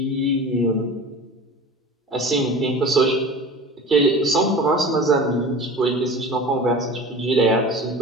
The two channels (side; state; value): both; normal; correlation 0.36